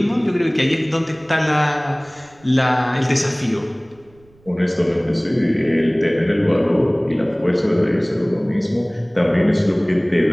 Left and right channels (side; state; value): right; noise; rumble, 30 dB below the sound